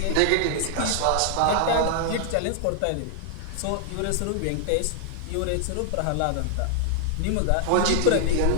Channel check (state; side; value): different; both; correlation 0.00